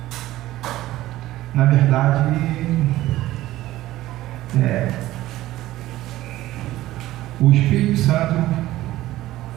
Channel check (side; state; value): left; quieter; 15.7 dB